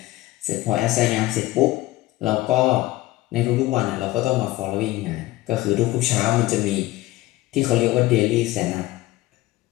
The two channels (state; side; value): quieter; right; 17.7 dB